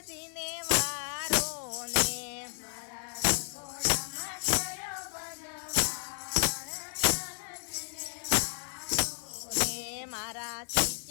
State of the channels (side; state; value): right; silent; digital silence